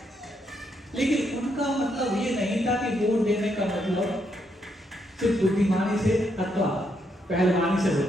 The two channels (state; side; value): normal; both; correlation 0.77